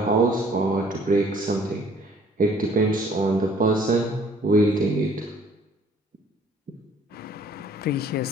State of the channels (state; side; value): normal; both; correlation 0.57